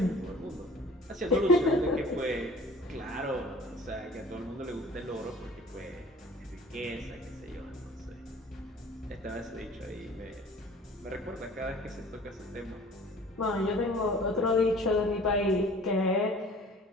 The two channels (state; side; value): normal; both; correlation 0.47